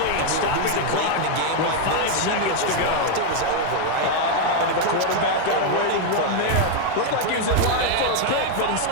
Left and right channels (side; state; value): both; different; correlation 0.00